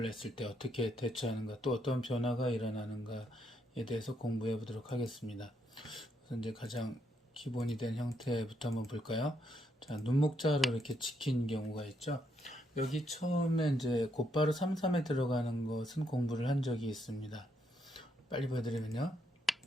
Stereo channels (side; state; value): both; normal; correlation 0.76